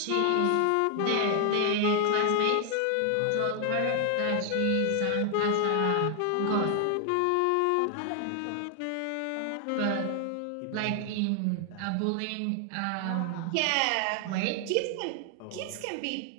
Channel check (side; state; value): both; different; correlation 0.00